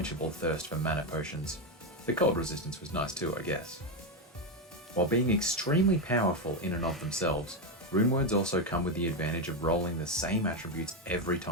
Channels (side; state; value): both; normal; correlation 0.08